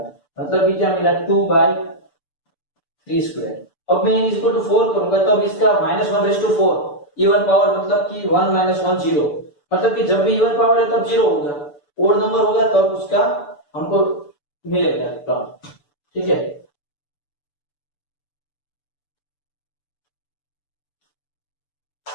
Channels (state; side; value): late; right; 6.9 ms